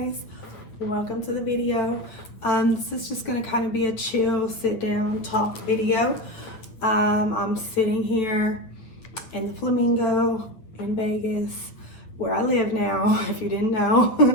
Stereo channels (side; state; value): right; late; 9.1 ms